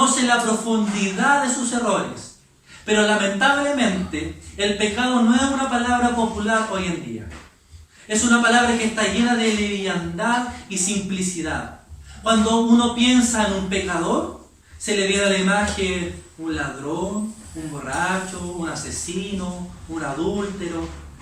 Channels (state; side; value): identical; both; correlation 1.00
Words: la profundidad de sus errores. Pero lamentablemente, el pecado no es una palabra popular hoy en día. Es una palabra que está llena de liviandad y simplicidad. Cuando uno piensa en un pecador, se le viene a la imagen un ladrón, un borracho, un asesino, un adúltero.